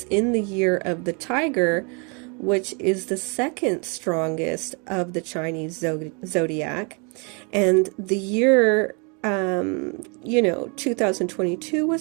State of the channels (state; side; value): quieter; left; 34.0 dB